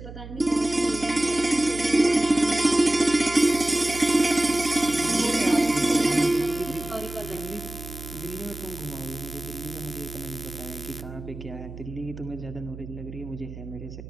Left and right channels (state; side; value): noise; right; hum, 13 dB below the sound